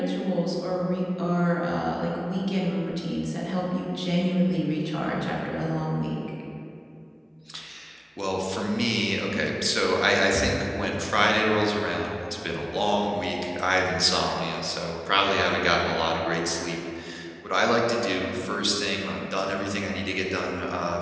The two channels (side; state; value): both; identical; correlation 1.00